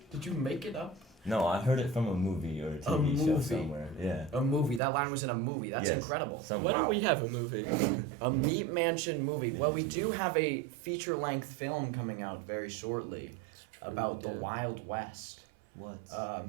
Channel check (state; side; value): drops out; left; at 4.8 s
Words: Did you make it up? No, I heard it from a movie or a TV show movie. somewhere. Yeah. A movie. That line was in a movie. That's Yes. incredible. Why don't we have a movie? A Meat Mansion movie. Well, we do have a feature-length film coming out very shortly about the Wild West. What?